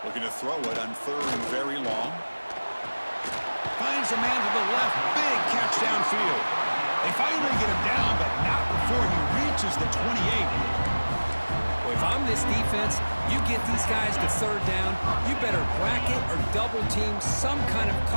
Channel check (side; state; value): both; inverted; correlation -1.00